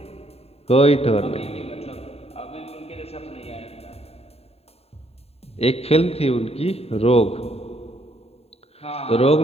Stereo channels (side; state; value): right; late; 0.29 ms